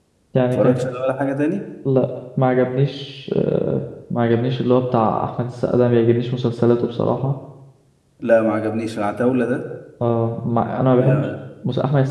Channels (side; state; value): both; identical; correlation 1.00